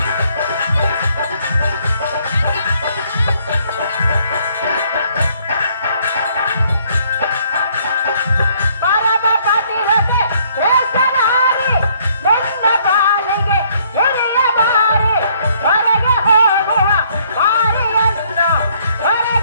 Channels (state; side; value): inverted; both; correlation -0.65